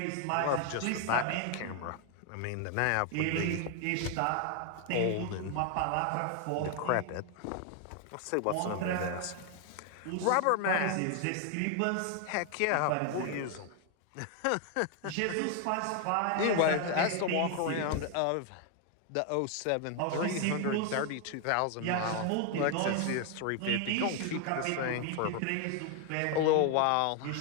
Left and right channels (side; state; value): both; different; correlation 0.00